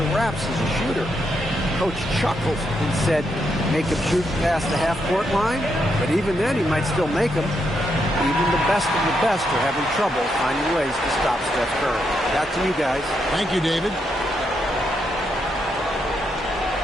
wraps as a shooter. Coach chuckled and said, make him shoot past the half-court line, but even then he might still make them. Even the best of the best are having trouble finding ways to stop Steph Curry. Back to you guys. Thank you, David.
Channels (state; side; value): normal; both; correlation 0.80